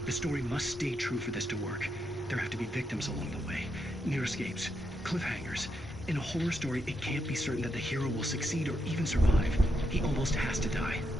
The story must stay true for this to work. There have to be victims along the way, near escapes, cliffhangers. In a horror story, it can't be certain that the hero will succeed or even survive. He almost has to die.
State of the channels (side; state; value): both; normal; correlation 0.82